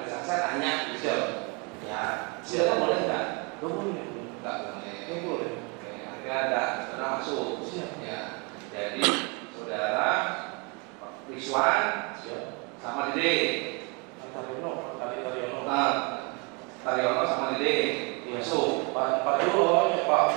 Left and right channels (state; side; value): quieter; left; 31.8 dB